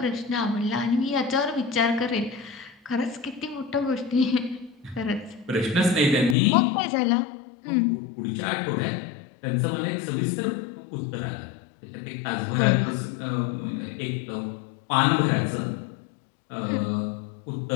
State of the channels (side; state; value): right; drops out; at 6.4 s